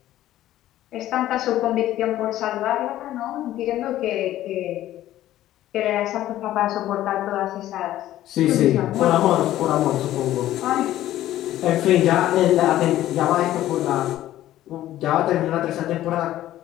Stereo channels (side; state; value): right; quieter; 13.7 dB